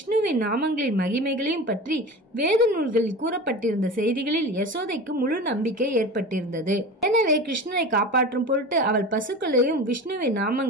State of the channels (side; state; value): both; normal; correlation 0.32